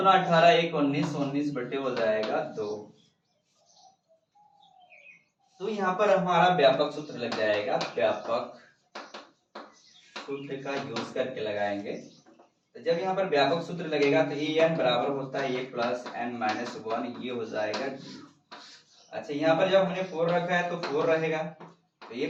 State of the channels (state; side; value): identical; both; correlation 1.00